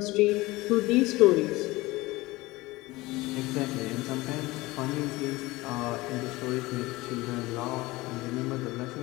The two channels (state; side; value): quieter; right; 20.5 dB